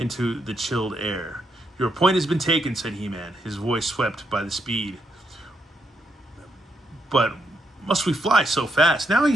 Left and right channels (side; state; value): both; normal; correlation 0.79